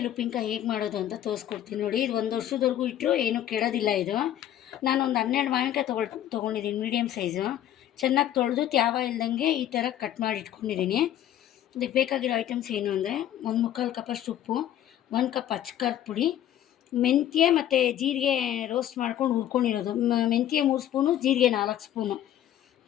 ಉಪ್ಪಿನಕಾಯಿ ಹೇಗೆ ಮಾಡೋದು ಅಂತ ತೋರಿಸ್ಕೊಡ್ತೀನಿ ನೋಡಿ. ಇದು 1 ವರ್ಷದವರೆಗೂ ಇಟ್ಟರು ಏನೂ ಕೆಡೋದಿಲ್ಲ ಇದು. ನಾನೊಂದು 12 ಮಾವಿನಕಾಯಿ ತೊಗೊಂಡಿದ್ದೀನಿ ಮೀಡಿಯಮ್ ಸೈಜು. ಚೆನ್ನಾಗಿ ತೊಳೆದು ತ್ಯಾವ ಇಲ್ದಂಗೆ ಈ ಥರ ಕಟ್ ಮಾಡಿ ಇಟ್ಕೊಂಡಿದ್ದೀನಿ. ಇದಕ್ಕೆ ಬೇಕಾಗಿರೋ ಐಟಮ್ಸ್ ಏನು ಅಂದರೆ 1/4 ಕಪ್ಪಷ್ಟು ಉಪ್ಪು, 1 ಕಪ್ ಅಚ್ಕಾರದ ಪುಡಿ, ಮೆಂತ್ಯ ಮತ್ತು ಜೀರಿಗೆ ರೋಸ್ಟ್ ಮಾಡ್ಕೊಂಡು ಹುರ್ಕೊಂಡಿರೋದು. ಮೆಂತ್ಯ 3 ಸ್ಪೂನು, ಜೀರಿಗೆ 4 ಸ್ಪೂನು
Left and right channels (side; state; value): right; quieter; 11.6 dB